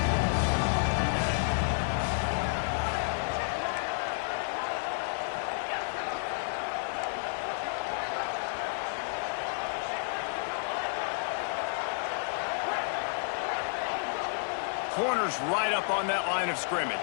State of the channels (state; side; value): silent; right; digital silence